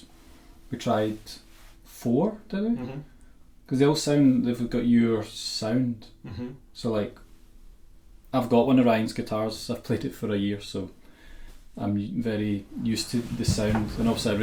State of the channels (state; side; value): identical; both; correlation 1.00